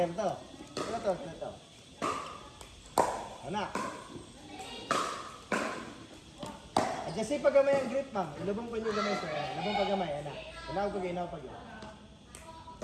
to. Ito. Ano? Adjustin pag gamay ang grip, ma'am. Ilubong pa niyo gamay, sir. Ilubong pag gamay, ana. Inaw pag.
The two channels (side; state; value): both; identical; correlation 1.00